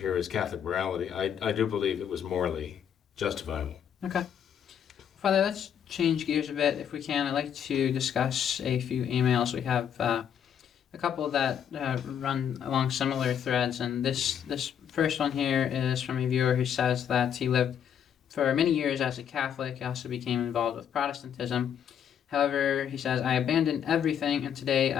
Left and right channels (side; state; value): right; quieter; 8.7 dB